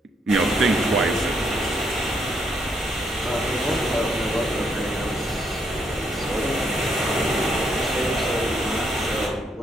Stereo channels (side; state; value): both; normal; correlation 0.74